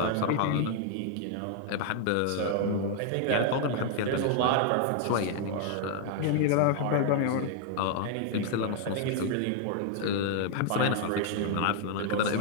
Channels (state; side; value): different; both; correlation 0.00